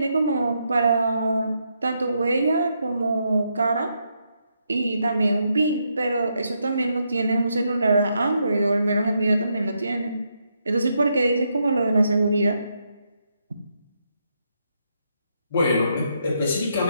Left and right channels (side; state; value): both; inverted; correlation -0.79